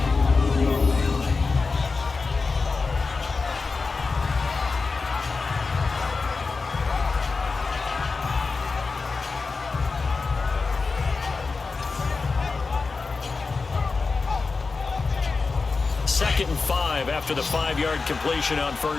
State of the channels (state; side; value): quieter; right; 4.2 dB